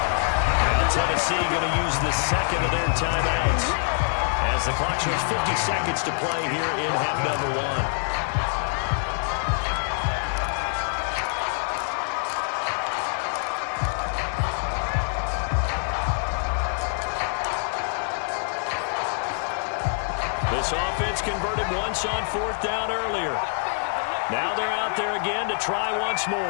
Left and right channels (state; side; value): silent; right; 62 dB below the other